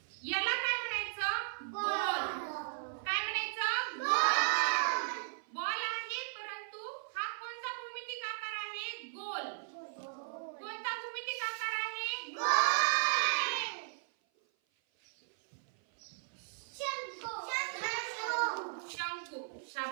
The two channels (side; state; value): left; silent; 54 dB below the other